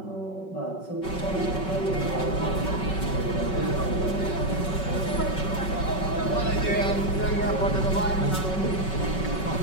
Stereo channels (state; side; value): late; right; 5.3 ms